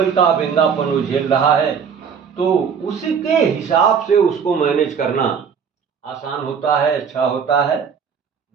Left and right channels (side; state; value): left; quieter; 6.8 dB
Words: का व्यंगापन वो झेल रहा है। तो उसी के हिसाब से उसको मैनेज करना आसान होता है, अच्छा होता है।